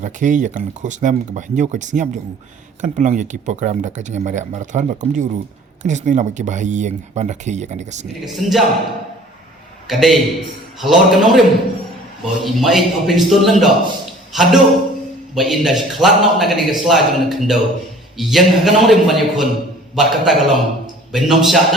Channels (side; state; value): both; normal; correlation 0.49